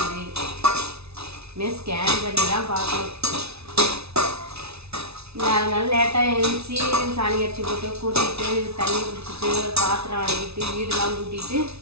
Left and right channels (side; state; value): left; late; 0.80 ms